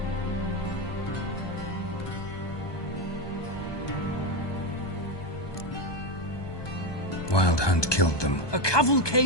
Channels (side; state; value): right; late; 1.2 ms